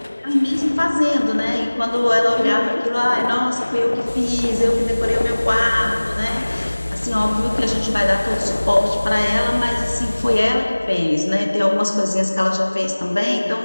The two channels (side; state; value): both; inverted; correlation -1.00